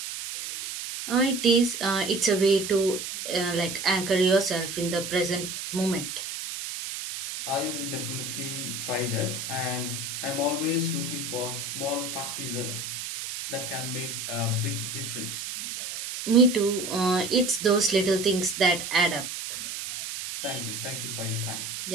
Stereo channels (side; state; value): right; noise; hiss, 6 dB below the sound